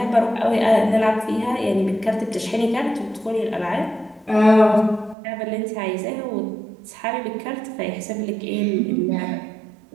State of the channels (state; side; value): drops out; left; at 5.2 s